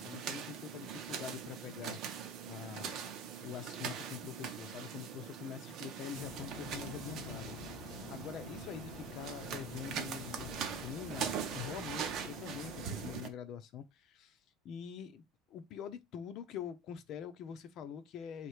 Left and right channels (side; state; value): both; normal; correlation 0.33